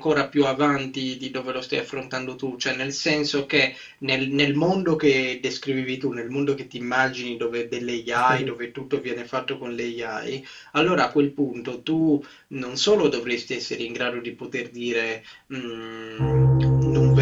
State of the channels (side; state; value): both; identical; correlation 1.00